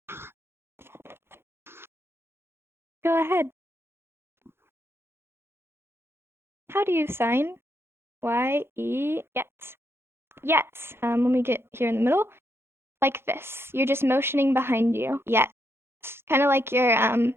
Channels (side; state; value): left; late; 0.12 ms